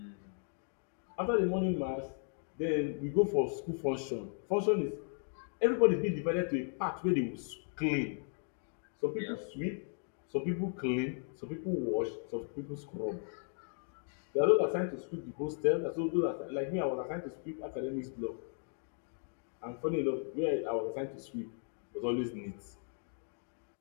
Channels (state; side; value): silent; right; 54 dB below the other